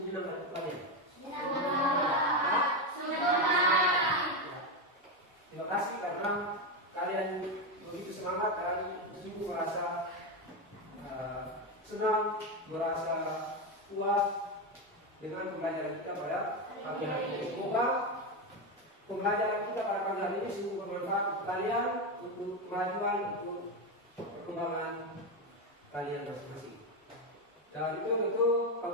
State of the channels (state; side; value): normal; both; correlation 0.11